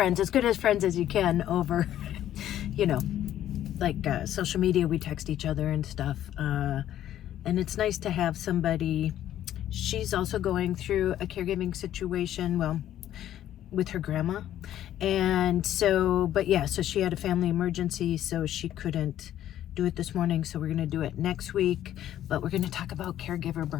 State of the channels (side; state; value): right; quieter; 11.9 dB